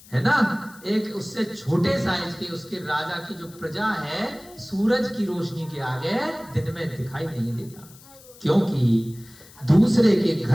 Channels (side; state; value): left; noise; hiss, 22 dB below the sound